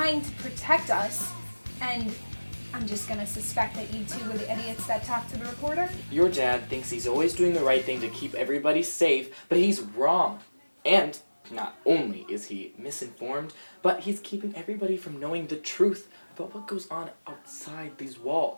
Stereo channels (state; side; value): inverted; both; correlation -1.00